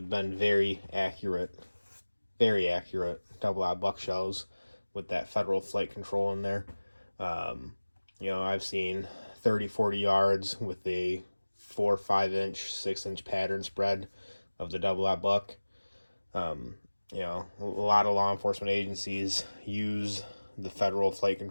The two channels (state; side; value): inverted; both; correlation -1.00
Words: been very accurate double aught buck shells with that Federal Flight Control in there. I've seen 30-40 yards with a 4 5-inch 6-inch pattern spread of the double aught buck. A lot of law enforcement agencies use the Federal Flight